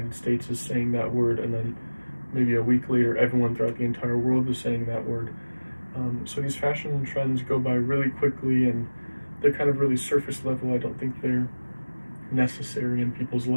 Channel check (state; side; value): inverted; both; correlation -1.00